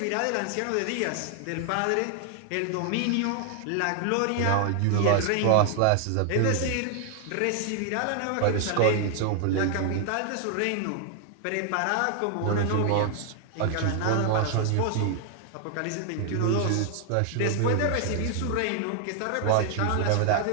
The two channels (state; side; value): different; both; correlation 0.00